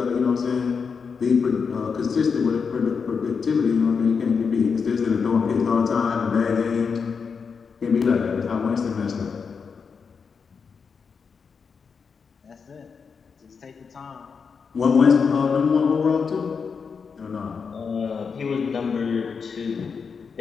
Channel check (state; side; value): quieter; right; 5.7 dB